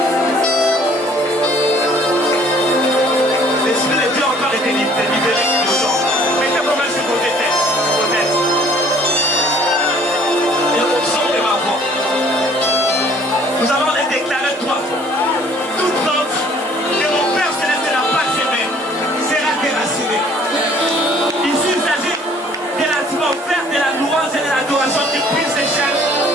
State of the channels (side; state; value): both; normal; correlation 0.56